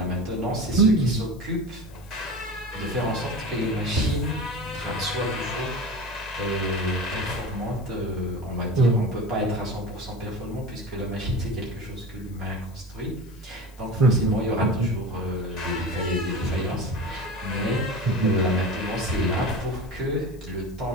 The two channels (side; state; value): left; noise; hiss, 26 dB below the sound